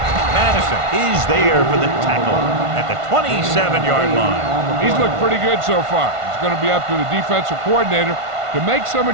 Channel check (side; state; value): left; late; 1.5 ms